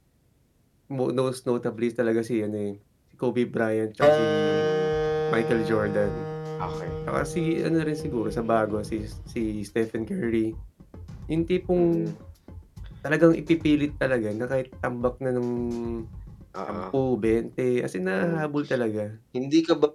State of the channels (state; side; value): identical; both; correlation 1.00